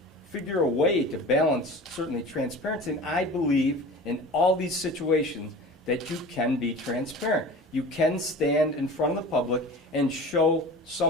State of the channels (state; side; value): normal; both; correlation 0.38